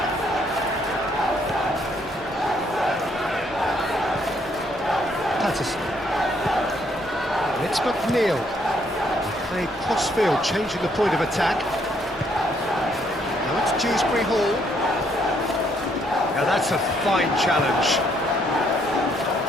it's McNeil. Played cross-field, changing the point of attack. Now it's Dewsbury Hall. Now that's a fine challenge.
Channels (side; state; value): both; normal; correlation 0.70